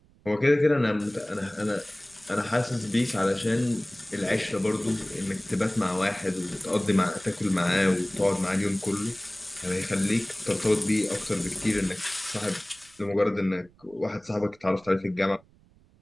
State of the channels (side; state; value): right; noise; rumble, 29 dB below the sound